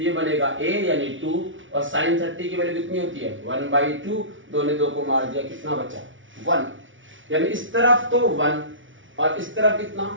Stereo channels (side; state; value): left; late; 0.56 ms